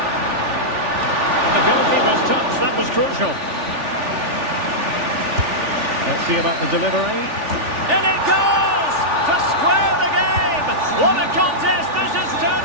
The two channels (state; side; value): late; left; 3.4 ms